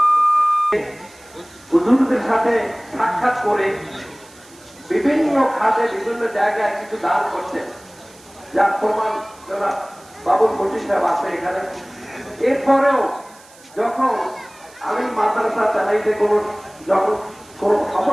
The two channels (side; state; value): right; noise; hiss, 25 dB below the sound